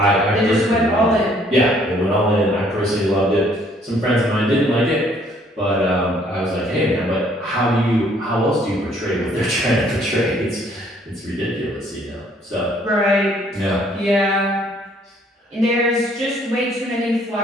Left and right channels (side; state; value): both; normal; correlation 0.62